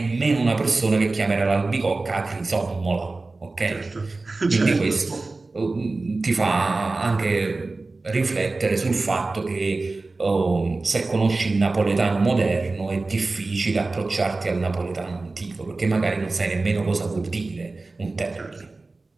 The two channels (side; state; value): left; quieter; 3.4 dB